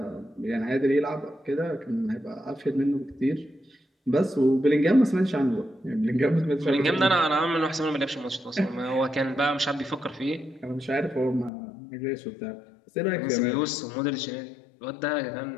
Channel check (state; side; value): drops out; right; at 11.5 s